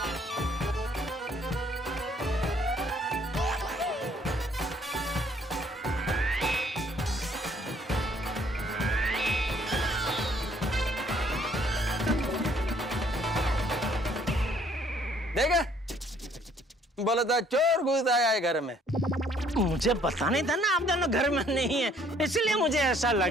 देखा, बोला था चोर घुस आया है घर में। मुझे पता नहीं था ना आप दोनों घर में नहीं है, इसलिए मुझे ऐसा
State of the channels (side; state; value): both; normal; correlation 0.62